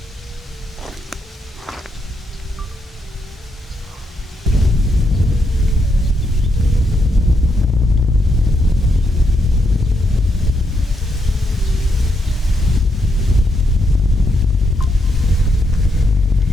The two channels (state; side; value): normal; both; correlation 0.79